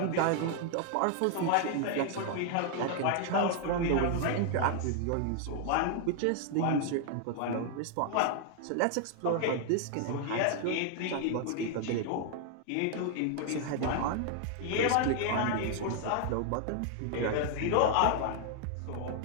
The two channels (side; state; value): both; different; correlation 0.00